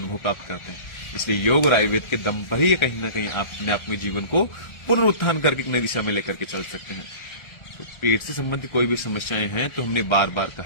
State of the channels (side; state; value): right; late; 1.3 ms